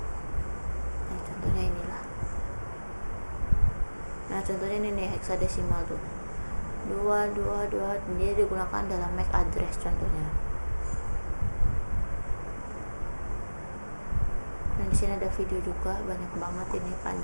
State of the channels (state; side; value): inverted; both; correlation -1.00